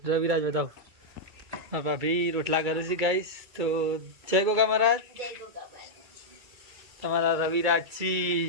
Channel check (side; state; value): left; late; 2.3 ms